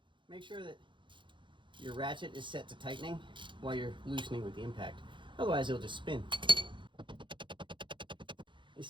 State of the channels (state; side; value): late; left; 0.23 ms